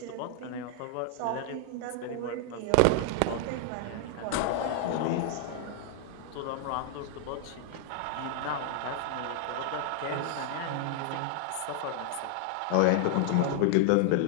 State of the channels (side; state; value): both; different; correlation 0.00